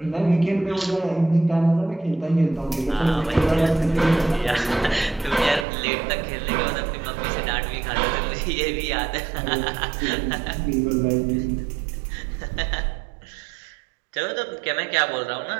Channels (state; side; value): drops out; left; at 5.7 s